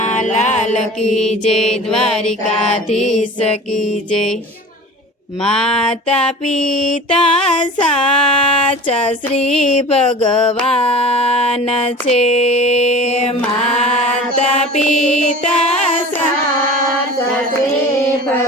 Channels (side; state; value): both; normal; correlation 0.38